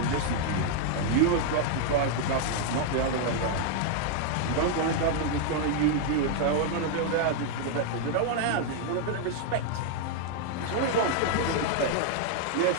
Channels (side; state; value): both; different; correlation 0.00